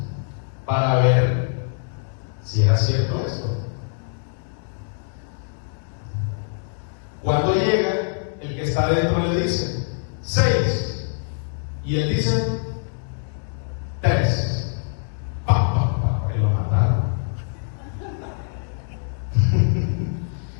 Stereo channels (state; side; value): silent; right; digital silence